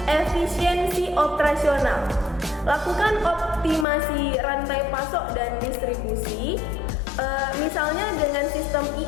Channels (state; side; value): drops out; right; at 3.9 s